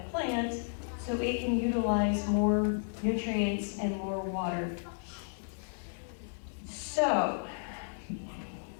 plant so it can utilize more nutrients and more water. So,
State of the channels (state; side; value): silent; right; digital silence